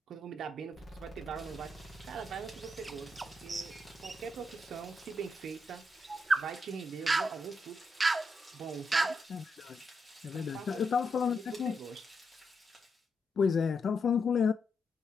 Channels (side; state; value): both; normal; correlation 0.83